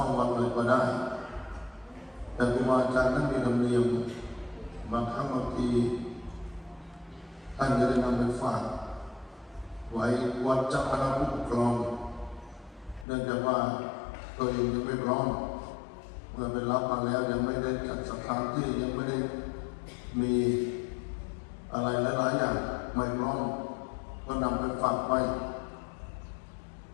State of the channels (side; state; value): right; drops out; at 13.1 s